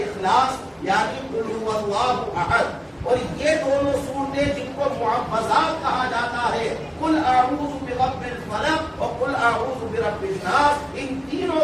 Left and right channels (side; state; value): both; identical; correlation 1.00